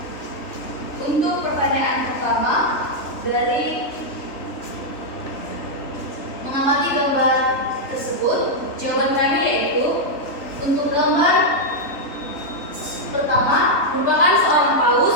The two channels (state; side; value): late; right; 3.4 ms